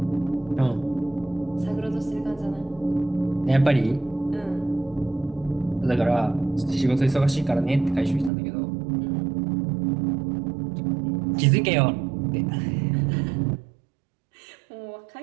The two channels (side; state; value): left; drops out; at 8.3 s